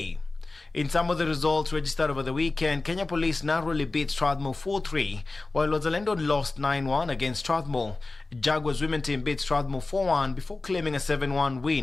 In some of the results registered over the weekend, Kenya Police narrowly beat Strathmore 4-3, while Wazalendo lost 9-1 against Strathmore. Jaguars women team beat Strathmore 4-1 before claiming a 7-1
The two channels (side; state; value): right; quieter; 3.4 dB